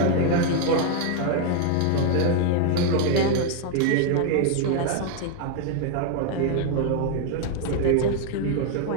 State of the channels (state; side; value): different; both; correlation 0.00